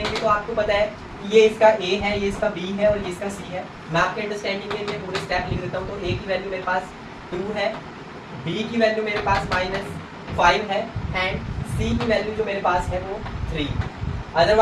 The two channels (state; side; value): identical; both; correlation 1.00